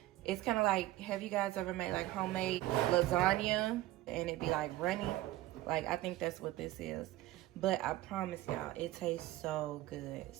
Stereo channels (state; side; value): quieter; left; 16.4 dB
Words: It's kind of like, have you guys ever made like homemade lasagna and it be like runny? Like, I think that's what this is. But I promise y'all, it tastes so good.